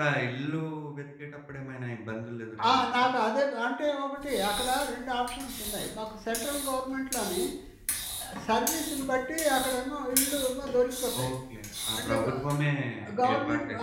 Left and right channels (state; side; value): identical; both; correlation 1.00